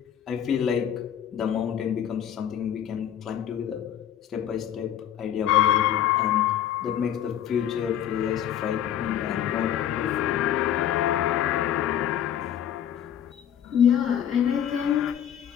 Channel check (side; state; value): right; quieter; 10.1 dB